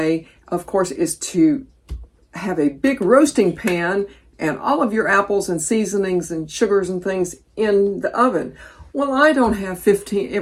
of course, is to have a big roasting pan and all of your apples and seasonings and sugars and things in the oven. Well, I don't have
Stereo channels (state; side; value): identical; both; correlation 1.00